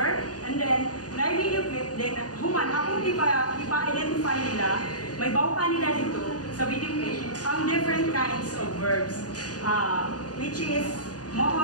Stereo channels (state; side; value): late; right; 0.68 ms